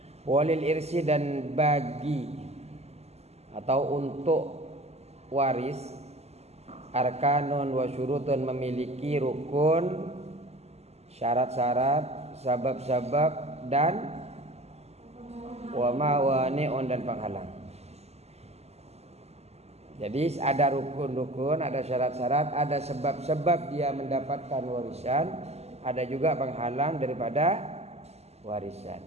Walil irsi, dan bagi atau untuk waris, arkanun wa syurutun, memiliki rukun, syarat-syarat, sabab-sabab, dan wa mawani'un, dan penghalang. Jadi ada rukun-rukun, ada syarat-syarat, ada sebab-sebab dia mendapatkan warisan, ada juga penghalang daripada warisan.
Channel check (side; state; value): left; late; 0.30 ms